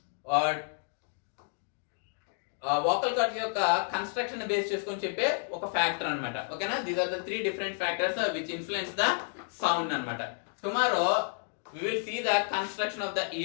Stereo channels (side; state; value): right; silent; 57 dB below the other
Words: వోకల్ కార్డ్ యొక్క కన్స్ట్రక్షన్ బేస్ చేసుకొని చెప్పే ఒక ఫ్యాక్టర్ అనమాట. ఓకేనా? These are the 3 different factors which influence the sound అనమాట. Tomorrow we will see the construction of the